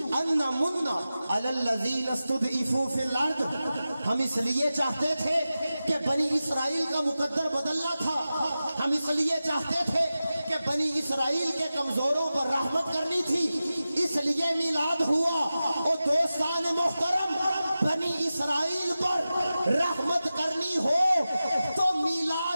أَن نَّمُنَّ عَلَى الَّذِينَ اسْتُضْعِفُوا فِي الْأَرْضِ، ہم اس لیے چاہتے تھے کہ بنی اسرائیل کا مقدر بدلنا تھا، ہم اس لیے چاہتے تھے کہ بنی اسرائیل کے کمزوروں پر رحمت کرنی تھی، اس لیے میلاد ہوا۔ اور دوستان محترم، بنی اسرائیل پر رحمت کرنی ہو تو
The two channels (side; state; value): both; inverted; correlation -0.94